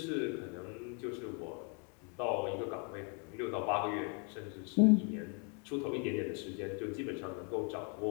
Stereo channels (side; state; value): right; quieter; 37.5 dB